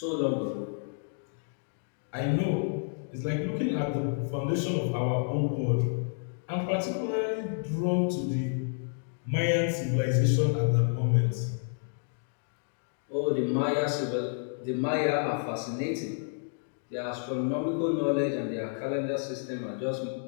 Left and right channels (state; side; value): silent; right; digital silence